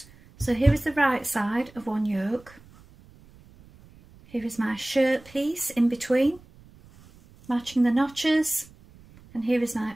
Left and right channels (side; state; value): right; noise; rumble, 25 dB below the sound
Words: So here is the right side of one yoke. Here is my shirt piece in between, matching the notches. And here is